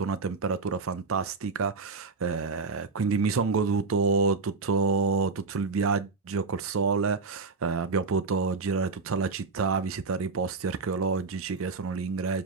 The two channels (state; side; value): quieter; left; 4.3 dB